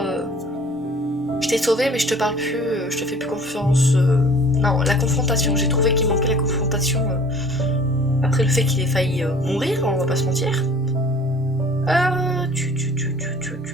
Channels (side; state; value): both; normal; correlation 0.50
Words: Je t'ai sauvé, mais je te parle plus, je te fais plus confiance. Non, la confrontation. J'ai trouvé qu'il manquait la confrontation. Après le fait qu'il ait failli mourir, on va pas se mentir.